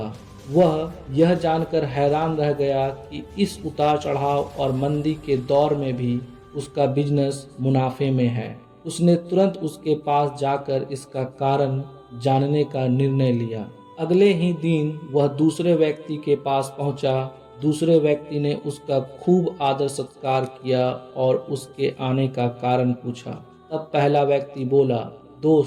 वह यह जानकर हैरान रह गया कि इस उतार चढ़ाव और मंदी के दौर में भी उसका बिजनेस मुनाफे में है। उसने तुरंत उसके पास जाकर इसका कारण जानने का निर्णय लिया। अगले ही दिन वह दूसरे व्यक्ति के पास पहुंचा। दूसरे व्यक्ति ने उसका खूब आदर सत्कार किया और उसके आने का कारण पूछा। तब पहला व्यक्ति बोला,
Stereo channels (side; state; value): both; identical; correlation 1.00